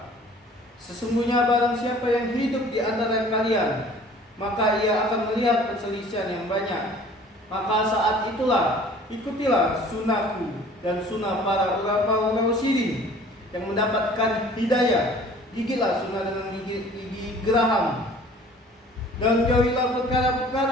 sesungguhnya barang siapa yang hidup di antara kalian, maka ia akan melihat perselisihan yang banyak. Maka saat itulah ikutilah sunnahku dan sunnah para ulama rasyidin yang mendapatkan hidayah. Gigilah sunnah dengan gigi geraham, dan jauhilah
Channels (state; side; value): normal; both; correlation 0.50